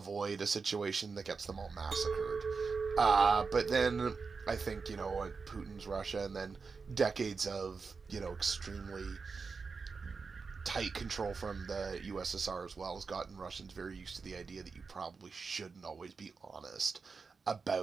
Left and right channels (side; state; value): left; quieter; 4.9 dB